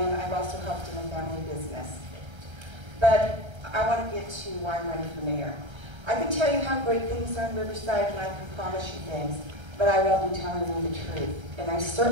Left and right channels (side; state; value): left; late; 1.3 ms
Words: I've also helped in a family business. But I want to get to why I'm running for mayor. I can tell you how great things are in Riverside, and I can promise you things, but I won't be telling you the truth, and I